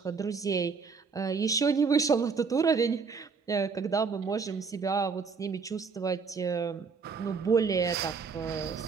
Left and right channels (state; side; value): quieter; left; 5.2 dB